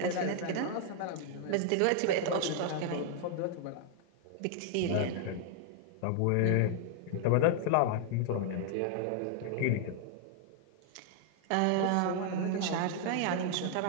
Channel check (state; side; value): different; both; correlation 0.00